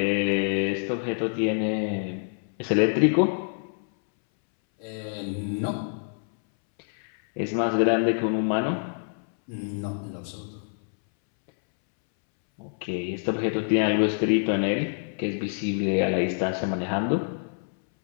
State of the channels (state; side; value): silent; right; 61 dB below the other